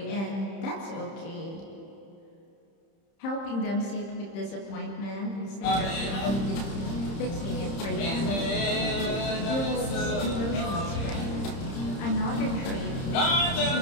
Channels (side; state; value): right; late; 30 ms